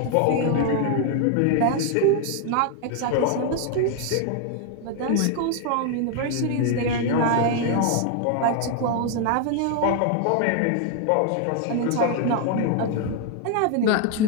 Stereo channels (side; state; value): both; different; correlation 0.00